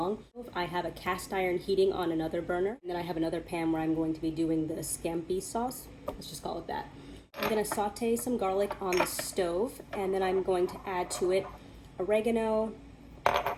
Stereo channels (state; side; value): identical; both; correlation 1.00